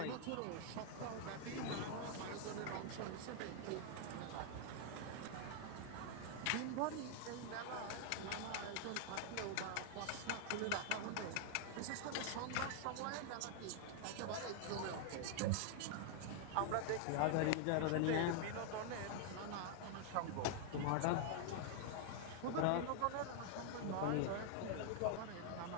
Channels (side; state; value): both; different; correlation 0.00